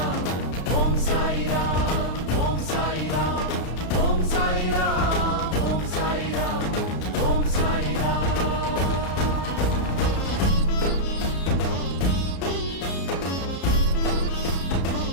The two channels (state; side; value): late; right; 33 ms